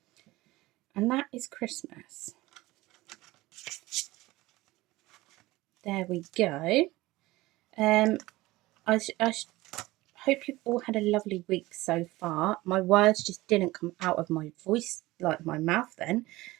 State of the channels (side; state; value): left; quieter; 19.1 dB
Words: And that is Christmas. There we go. I hope you've all had a lovely week so far. My words just didn't come out of my voice, like my mouth then.